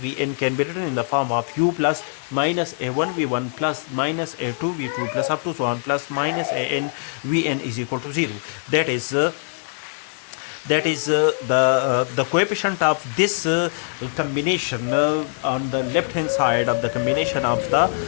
can be written in the form of U plus minus A1 V1 plus minus A2 V2 plus up to so on plus minus An Vn is equal to 0. That is the coefficient of this combination on the left hand side of the combination of the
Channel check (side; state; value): right; silent; digital silence